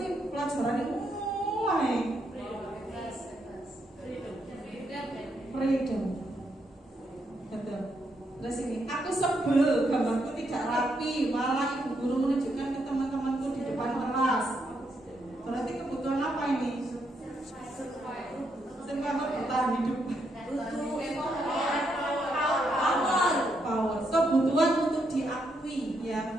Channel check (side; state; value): both; normal; correlation 0.78